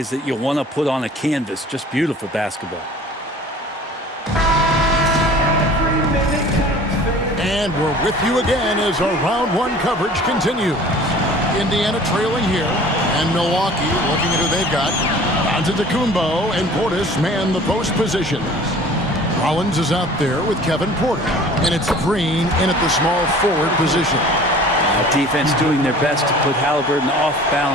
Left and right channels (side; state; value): both; normal; correlation 0.46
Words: that you want to put on a canvas. Just beautiful basketball. And we're with you again as our round one coverage continues. Indiana trailing here, and Milwaukee looking at who they've got. Antetokounmpo and Portis man the post positions. Rollins is out there with Kevin Porter, and it's Green in at the small forward position. Defense doing their best to put Halliburton off